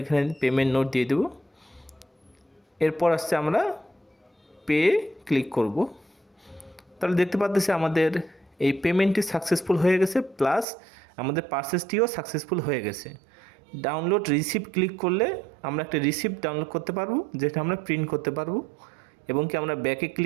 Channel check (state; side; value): drops out; left; at 10.7 s